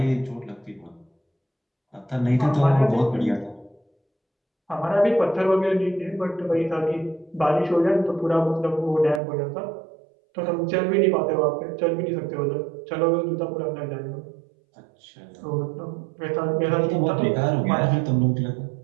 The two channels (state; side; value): drops out; left; at 9.2 s